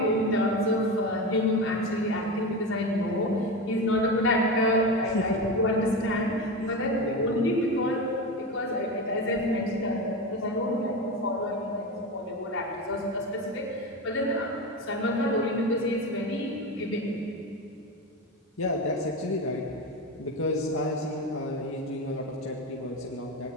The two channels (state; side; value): normal; both; correlation 0.21